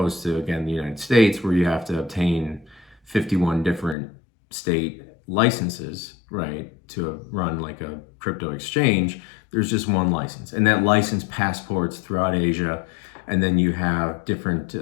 to, again, the United States, where you have to obtain 51 different state licenses, right, to run like a crypto exchange, there's just one license. And that license passports throughout Asia. And then you have different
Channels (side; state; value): right; drops out; at 4.0 s